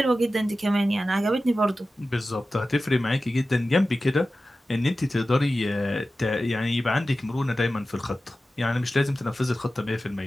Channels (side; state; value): both; normal; correlation 0.94